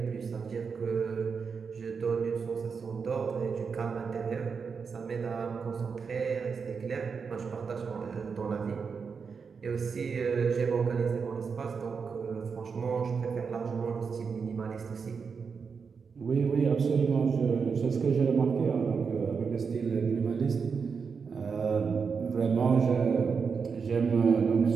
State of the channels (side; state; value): left; quieter; 5.7 dB